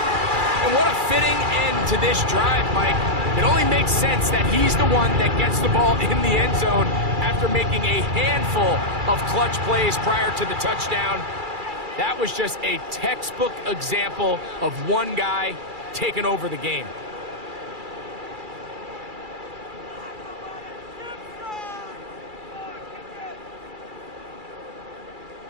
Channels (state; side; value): late; left; 2.3 ms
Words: And what a fitting end to this drive, Mike. It only makes sense that he's the one that gets the ball in the end zone after making a handful of clutch plays prior to the touchdown. That was just a textbook example of one guy taking over the game.